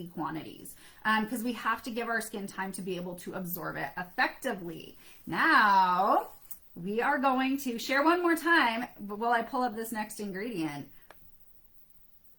quantities because we have to give our skin time to be able to absorb it effectively. Now, we are going to share one more time while I pull up this next ingredient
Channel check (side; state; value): both; identical; correlation 1.00